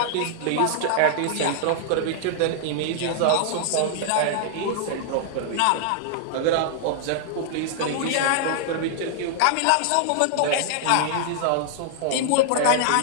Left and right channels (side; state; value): both; different; correlation -0.01